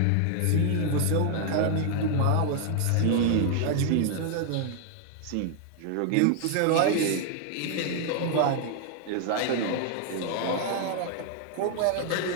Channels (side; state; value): both; different; correlation 0.00